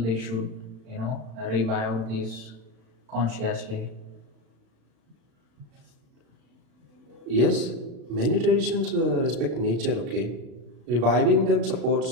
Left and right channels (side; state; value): left; late; 35 ms